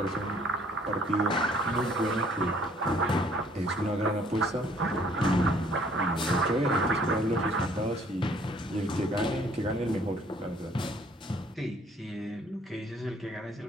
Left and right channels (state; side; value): normal; both; correlation 0.60